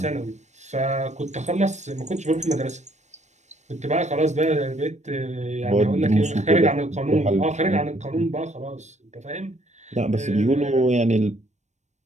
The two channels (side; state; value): left; late; 0.34 ms